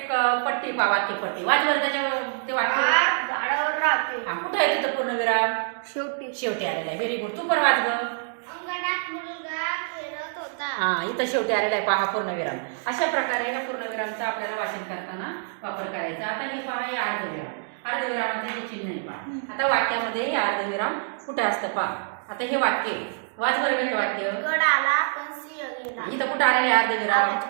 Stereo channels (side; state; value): left; silent; digital silence